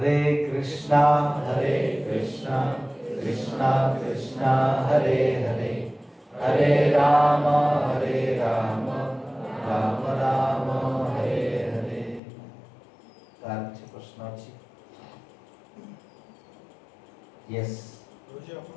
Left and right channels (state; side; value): drops out; right; at 12.2 s